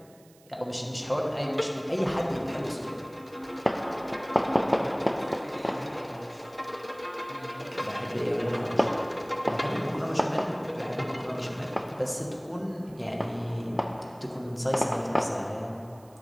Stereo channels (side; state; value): right; noise; hiss, 28 dB below the sound